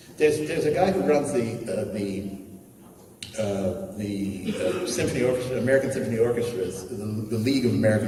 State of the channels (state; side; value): identical; both; correlation 1.00